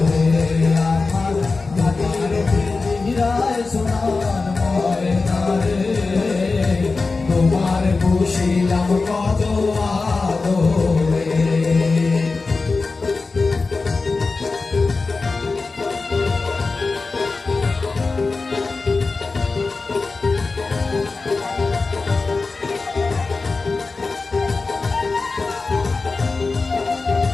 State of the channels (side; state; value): right; quieter; 4.0 dB